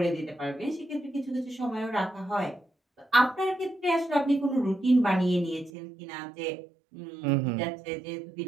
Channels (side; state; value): left; drops out; at 5.7 s